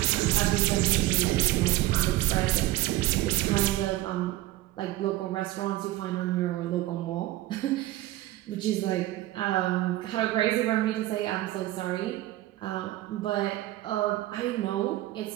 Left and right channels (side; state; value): left; quieter; 16.3 dB